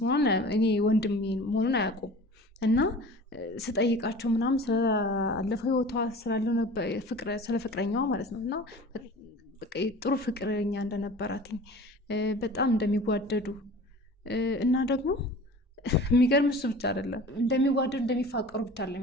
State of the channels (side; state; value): both; normal; correlation 0.41